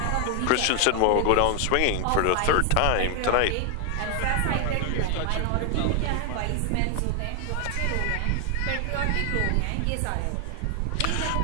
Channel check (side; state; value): both; different; correlation 0.00